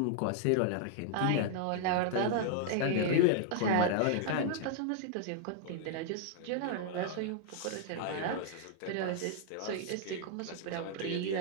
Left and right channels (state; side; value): different; both; correlation -0.01